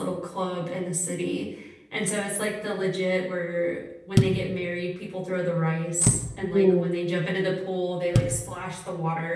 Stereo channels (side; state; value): both; identical; correlation 1.00